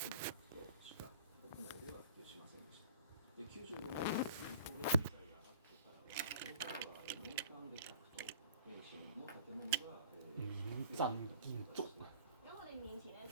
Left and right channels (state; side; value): inverted; both; correlation -0.49